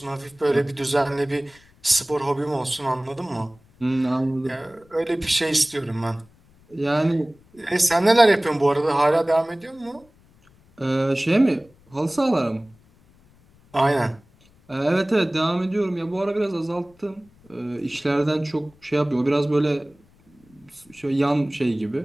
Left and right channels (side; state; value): left; noise; rumble, 30 dB below the sound